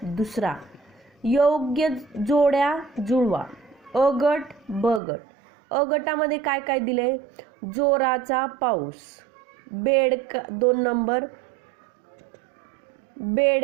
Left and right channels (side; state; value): left; drops out; at 5.0 s